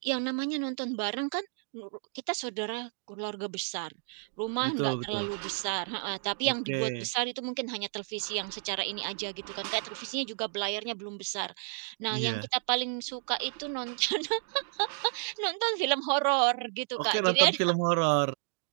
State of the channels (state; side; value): silent; left; 57 dB below the other